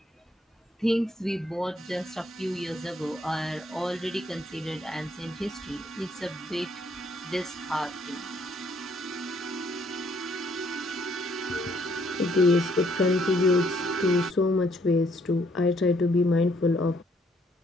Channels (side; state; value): both; normal; correlation 0.68